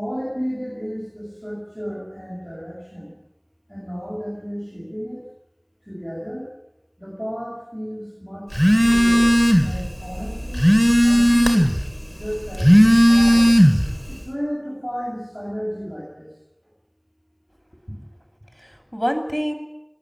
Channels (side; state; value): both; identical; correlation 1.00